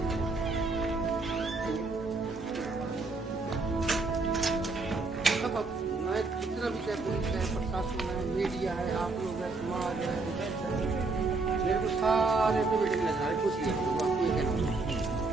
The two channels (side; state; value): left; quieter; 3.6 dB